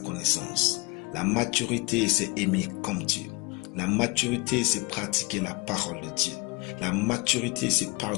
La maturité, c'est aimer comme Dieu. La maturité, c'est pratiquer la parole de Dieu. La maturité, c'est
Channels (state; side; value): quieter; right; 25.7 dB